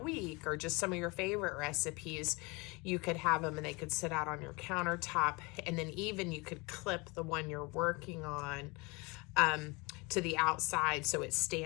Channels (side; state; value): right; quieter; 26.6 dB